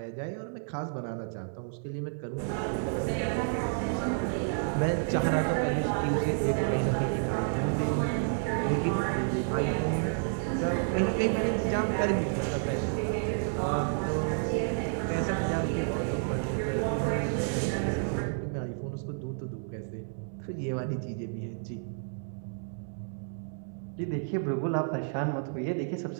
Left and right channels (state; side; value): silent; left; digital silence